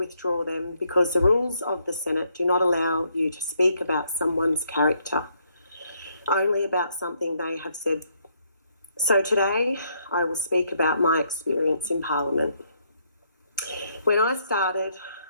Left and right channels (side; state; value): both; inverted; correlation -0.72